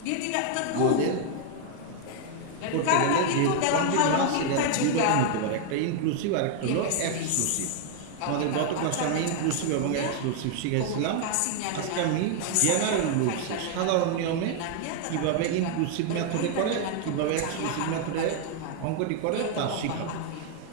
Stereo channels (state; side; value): different; both; correlation 0.00